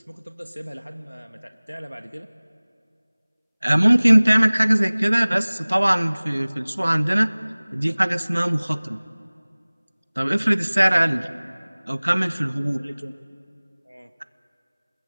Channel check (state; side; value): inverted; both; correlation -1.00